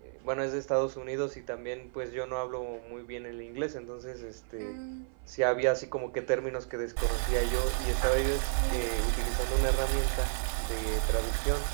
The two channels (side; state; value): left; silent; 57 dB below the other